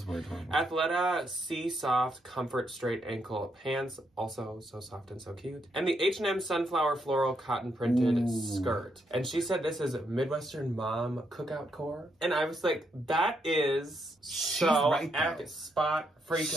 weird. Athleta Sea Soft Comfort Straight Ankle Pants, also so soft and so cute. And the H&M Sunflower Floral Cotton Printed Skirt. And she said this is Midwestern Mom Cookout Core. And I was like, that is so right, spot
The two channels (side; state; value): both; normal; correlation 0.78